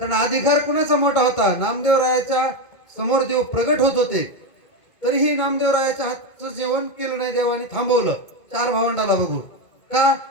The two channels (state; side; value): late; right; 2.2 ms